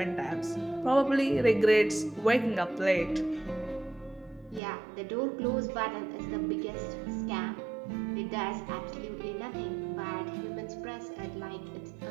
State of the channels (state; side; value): drops out; left; at 4.6 s